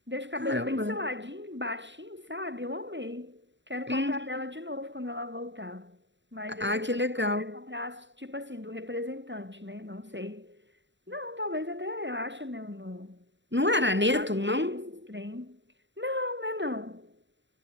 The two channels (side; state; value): left; late; 0.53 ms